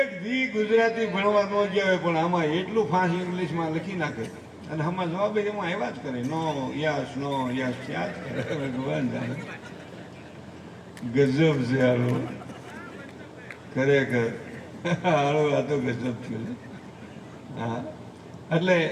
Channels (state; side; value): identical; both; correlation 1.00